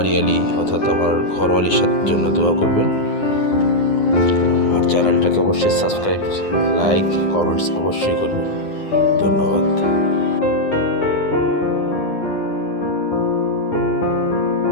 অর্থাৎ আমার ঘরওয়ালির জন্য দোয়া করবেন। আর চ্যানেলটাকে অবশ্যই সাবস্ক্রাইব, লাইক, কমেন্টস অবশ্যই করবেন। ধন্যবাদ।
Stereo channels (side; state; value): right; late; 9.7 ms